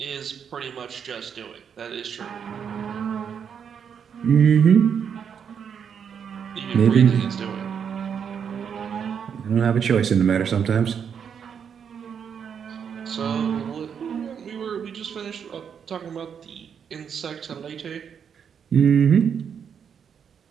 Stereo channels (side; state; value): left; quieter; 7.5 dB